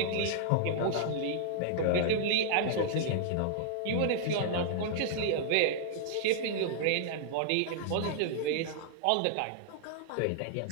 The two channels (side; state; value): both; different; correlation -0.01